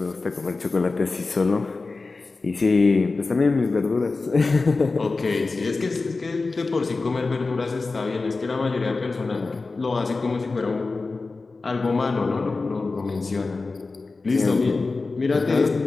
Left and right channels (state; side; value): quieter; right; 3.8 dB